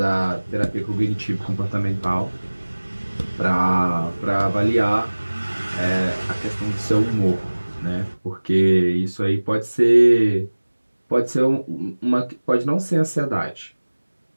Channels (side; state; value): both; inverted; correlation -1.00